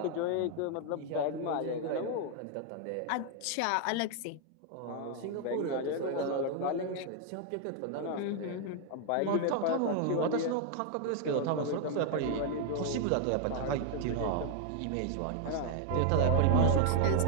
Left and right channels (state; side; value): different; both; correlation 0.00